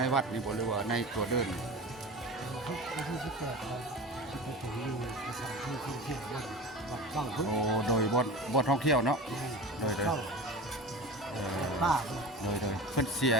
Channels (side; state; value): both; normal; correlation 0.33